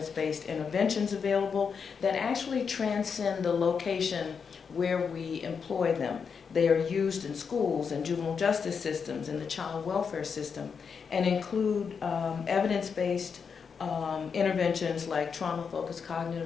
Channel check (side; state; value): right; quieter; 6.1 dB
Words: interventions available that actually transcend the location where we employ them. They are used in schools and juvenile justice systems and the child welfare system, and include evidence-based interventions like trauma-focused